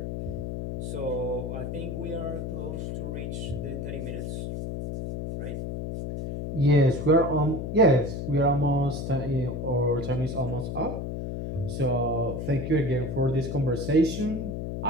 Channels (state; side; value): noise; left; hum, 4 dB below the sound